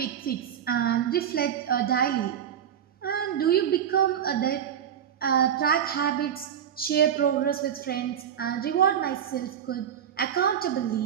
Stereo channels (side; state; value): left; quieter; 9.0 dB